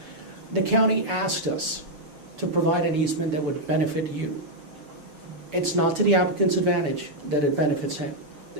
The county asked us to provide an easement that would benefit you. It's not to the applicant's advantage that it benefits him.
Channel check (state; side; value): late; left; 6.9 ms